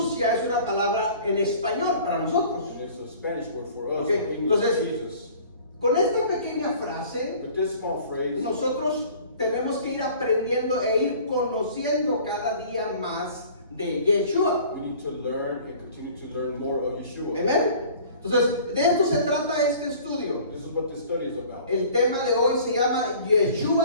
ya es una palabra en español para nosotros. And it's a Spanish word for us. Okay, In English, entonces- Jesus. Con esta pequeña frase, With this small phrase, nosotros tenemos que ir aprendiendo e ir conociendo cada día más de Yeshua. we need to learn and continue to learn more of Yeshua. Amén. Entonces, de esto se trata este estudio. This is what this study is about. El tema de hoy se llama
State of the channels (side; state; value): both; inverted; correlation -0.48